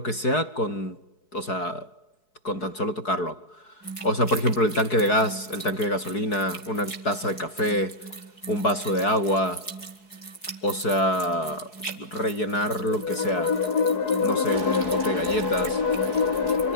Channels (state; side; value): late; right; 4.7 ms